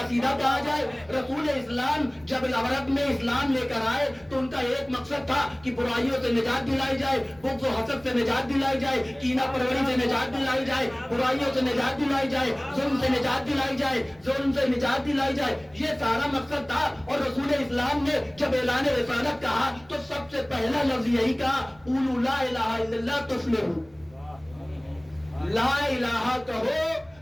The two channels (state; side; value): noise; right; rumble, 27 dB below the sound